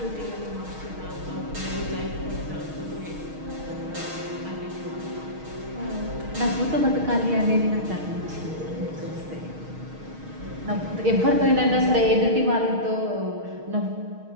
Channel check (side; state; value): left; late; 6.4 ms